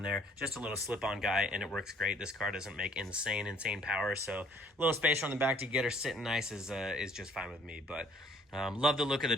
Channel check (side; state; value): both; normal; correlation 0.59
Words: there, just a little slip-on guy, and it works great. This car doesn't make insane power, so a little spacer on the back to get her sitting nice is just fine with me. But love the look of the